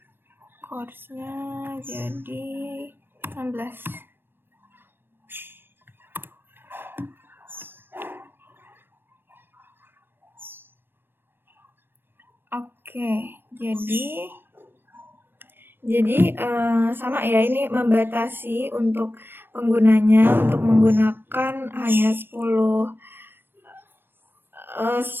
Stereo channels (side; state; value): left; late; 0.098 ms